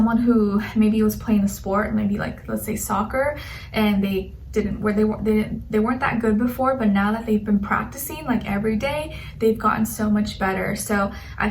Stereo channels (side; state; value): both; identical; correlation 1.00